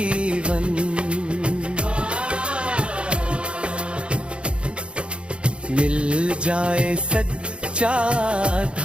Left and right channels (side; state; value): left; late; 0.057 ms